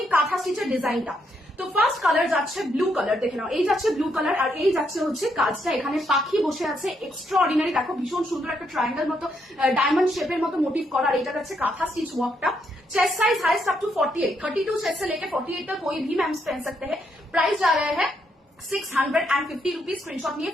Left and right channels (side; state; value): both; normal; correlation 0.76